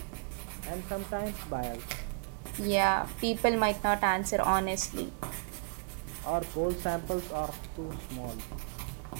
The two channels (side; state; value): left; quieter; 39.2 dB